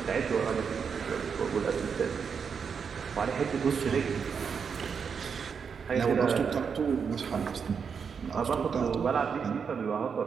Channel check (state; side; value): quieter; left; 6.3 dB